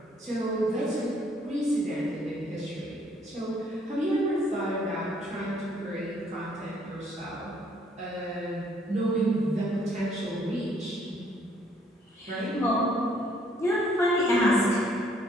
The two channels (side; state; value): both; normal; correlation 0.65